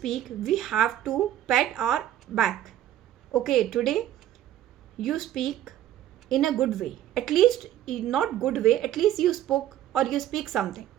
we have to pat our back. Okay, today you speak in a good way. At least, not good way, at least you spoke, or you speak something,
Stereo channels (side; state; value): left; quieter; 12.1 dB